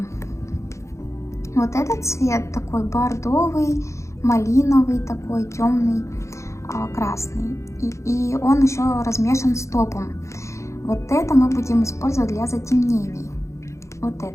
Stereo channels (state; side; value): late; right; 0.14 ms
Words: Вот этот цвет такой бордовый, малиновый, такой темный, красный. И он еще размешан с топом. Вот это мы будем использовать для затемнений. Вот